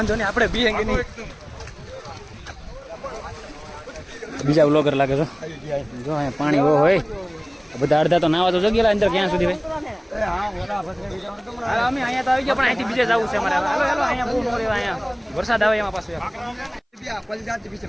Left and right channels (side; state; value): both; identical; correlation 1.00